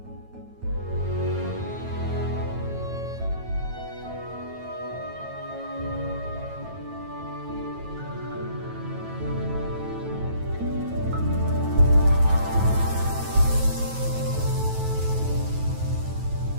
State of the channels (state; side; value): late; left; 9.2 ms